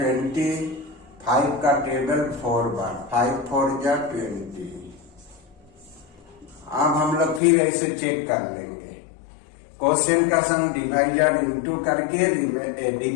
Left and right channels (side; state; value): right; drops out; at 7.4 s